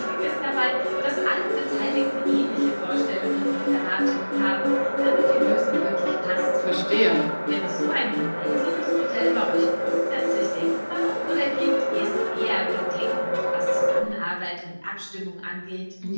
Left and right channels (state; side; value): inverted; both; correlation -1.00